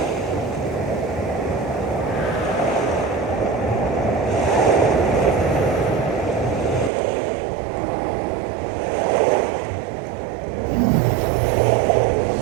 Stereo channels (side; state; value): left; drops out; at 6.9 s